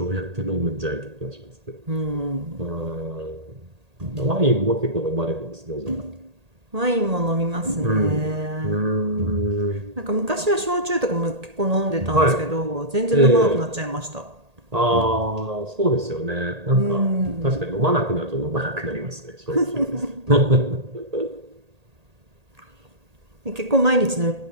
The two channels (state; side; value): late; left; 1.8 ms